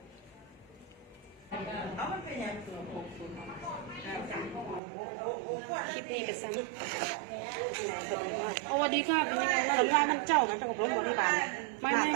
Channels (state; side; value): drops out; left; at 4.8 s